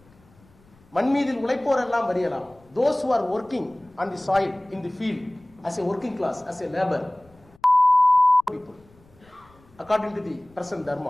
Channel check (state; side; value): noise; left; rumble, 29 dB below the sound